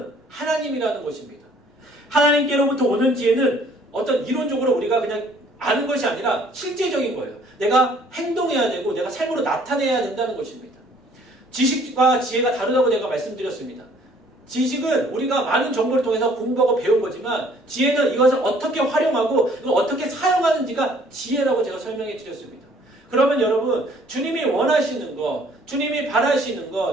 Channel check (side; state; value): both; normal; correlation 0.58